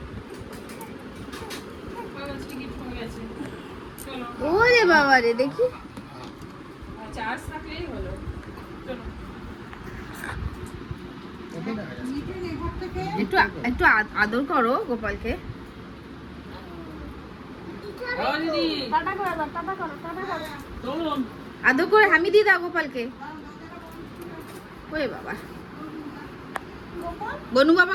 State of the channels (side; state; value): both; identical; correlation 1.00